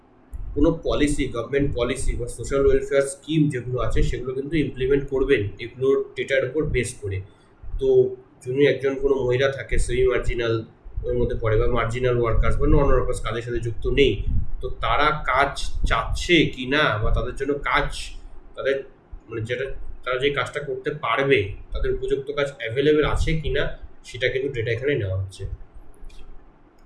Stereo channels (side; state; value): both; identical; correlation 1.00